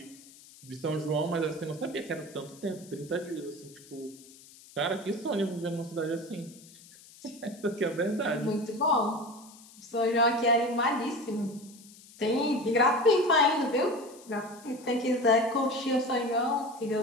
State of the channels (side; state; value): left; noise; hiss, 22 dB below the sound